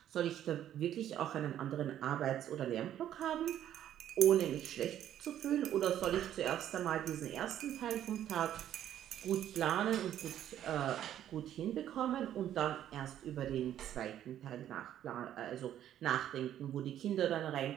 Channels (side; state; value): left; quieter; 11.2 dB